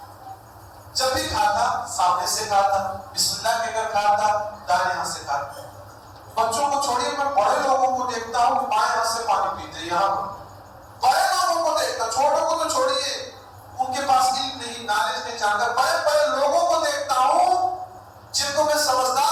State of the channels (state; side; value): identical; both; correlation 1.00